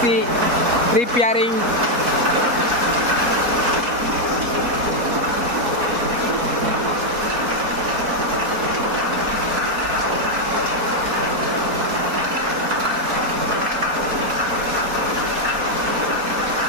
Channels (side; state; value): left; late; 4.1 ms